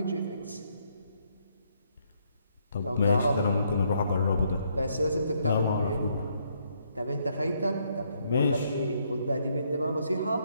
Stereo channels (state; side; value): inverted; both; correlation -0.72